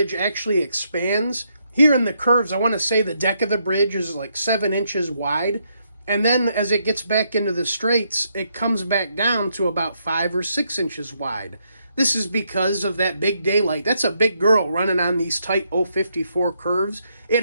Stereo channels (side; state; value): both; inverted; correlation -0.77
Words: actually expands. Here in the curves, I want to say the deck of the bridge is like 7 inches wide. And then as it gets back into the straights, it comes back down to about 5 or 6 inches wide. This is because of that big daylight. That's a big girl running on these tight 054 curves. It